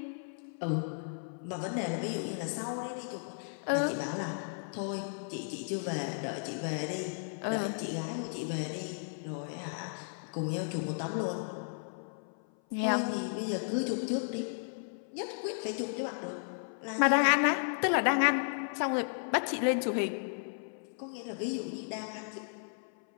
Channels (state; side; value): silent; right; 55 dB below the other